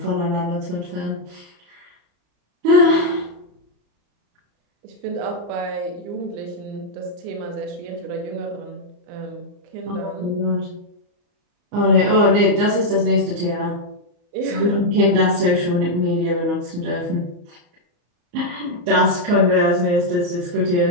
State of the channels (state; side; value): late; left; 34 ms